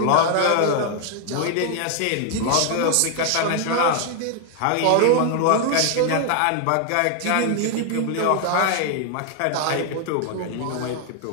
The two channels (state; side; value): different; both; correlation 0.00